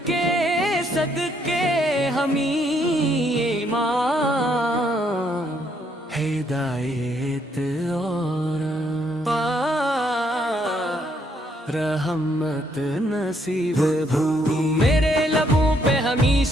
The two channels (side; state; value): both; normal; correlation 0.71